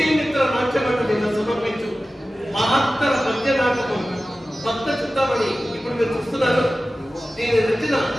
నాట్య మండలిగా సమర్పించు మహత్తర పద్య నాటకం భక్త చింతామణి ఇప్పుడు మీరు చూస్తున్నారు. దీని రచన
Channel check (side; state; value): both; normal; correlation 0.95